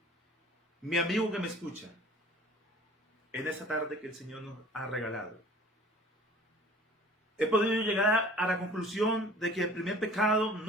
Mi amigo que me escucha, en esta tarde que el Señor nos ha regalado, he podido llegar a la conclusión de que el primer pecado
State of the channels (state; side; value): normal; both; correlation 0.48